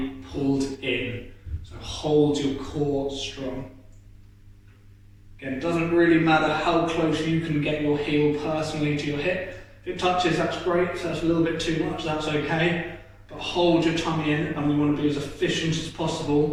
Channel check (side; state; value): both; identical; correlation 1.00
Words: pulled in. So hold your core strong. Again, it doesn't really matter how close you can get your heel personally to your hip. If it touches, that's great. If that's a little bit too much, that's okay. But hold your tummy in, and we want to be as efficient as